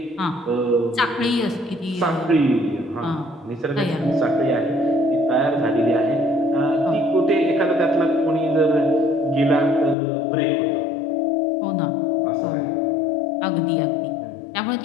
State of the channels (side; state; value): right; drops out; at 10.0 s